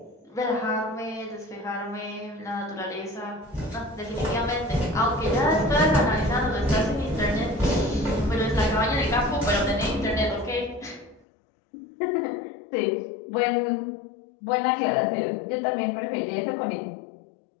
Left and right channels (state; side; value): drops out; right; at 11.2 s